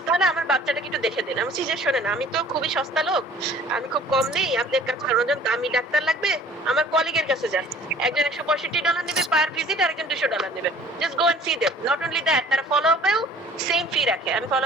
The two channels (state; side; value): normal; both; correlation 0.51